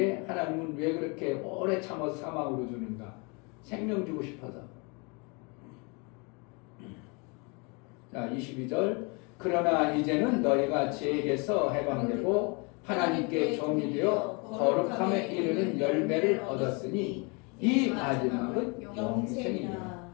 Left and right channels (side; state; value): right; quieter; 31.3 dB